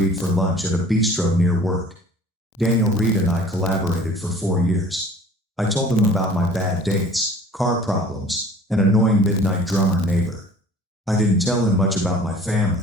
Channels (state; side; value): normal; both; correlation 0.48